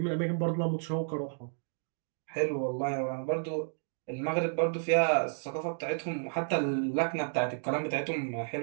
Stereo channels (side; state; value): left; silent; digital silence